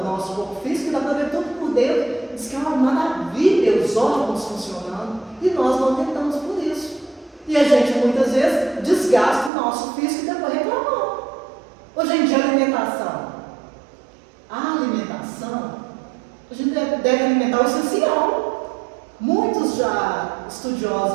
nosso corpo físico, e dá para ver tudo por dentro. Diz que é uma maravilha os órgãos funcionando, e nós não tentamos por isso. E a gente muitas vezes desgasta o nosso físico e depois reclamamos. Hoje em dia, alimentação. A alimentação, a gente deve alimentar o essencial. Muitos já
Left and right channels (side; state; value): left; drops out; at 9.5 s